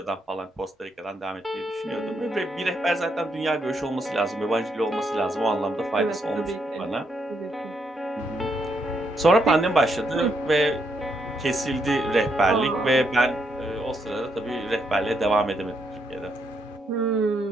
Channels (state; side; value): normal; both; correlation 0.77